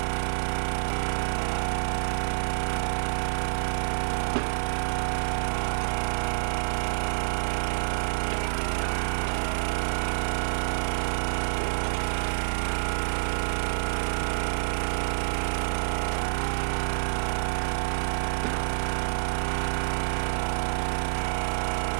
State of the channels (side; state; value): left; silent; 59 dB below the other